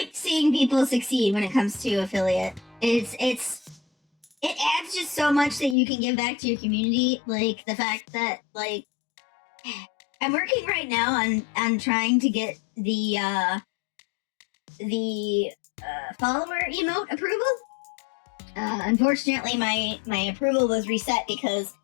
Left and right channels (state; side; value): drops out; right; at 5.8 s